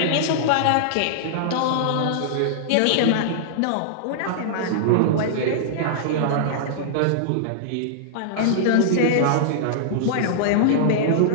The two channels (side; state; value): both; different; correlation -0.02